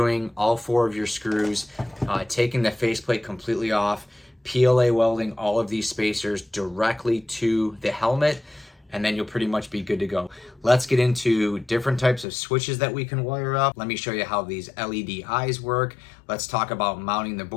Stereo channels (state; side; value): drops out; right; at 12.2 s